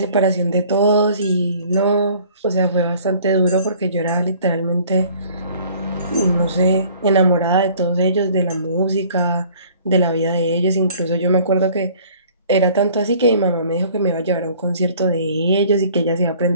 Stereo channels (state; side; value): inverted; both; correlation -0.53